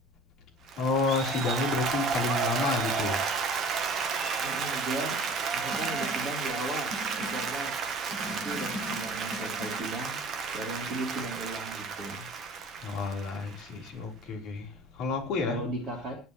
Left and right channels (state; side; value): normal; both; correlation 0.44